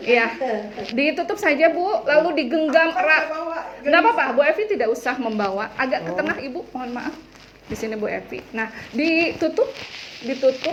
Iya, ditutup saja Bu, lalu digenggam erat. Nggak apa-apa, Bu Evi tidak usah membawa. Agak ke tengah Ibu, mohon maaf. Di sini Bu Evi. Nah, ditutup,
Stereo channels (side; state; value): both; identical; correlation 1.00